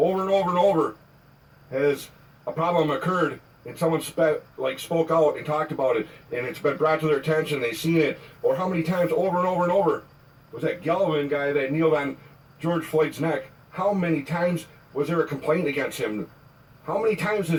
and over and over has a problem occurred and someone spoke out and talked about it and it's been brought to their attention, they've seen it? Or how many times over and over and over was that Galvin guy that kneeled on George Floyd's neck? How many times was there a complaint against him? How many times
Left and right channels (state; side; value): identical; both; correlation 1.00